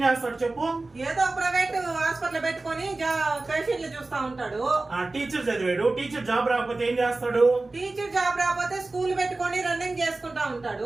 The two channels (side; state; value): left; quieter; 3.2 dB